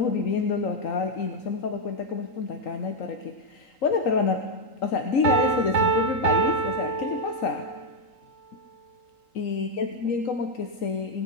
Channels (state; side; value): late; right; 3.8 ms